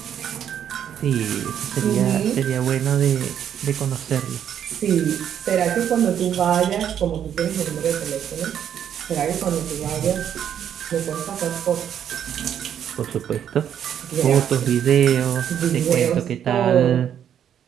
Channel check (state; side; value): quieter; left; 9.3 dB